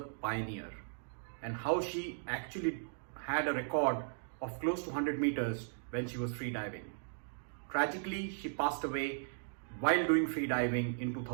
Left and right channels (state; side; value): silent; left; digital silence